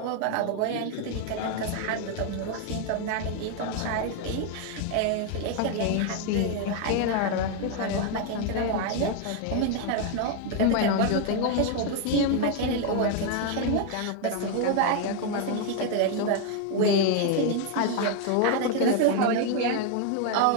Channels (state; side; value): different; both; correlation 0.01